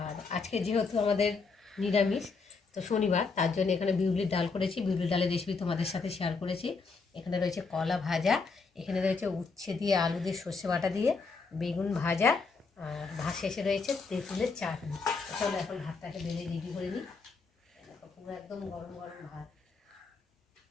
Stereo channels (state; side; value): quieter; right; 4.5 dB